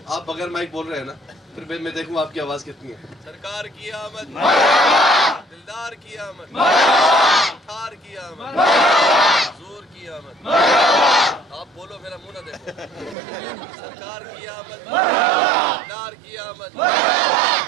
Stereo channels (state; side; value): drops out; left; at 13.2 s